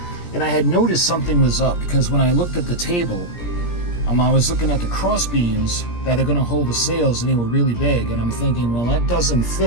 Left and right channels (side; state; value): right; late; 17 ms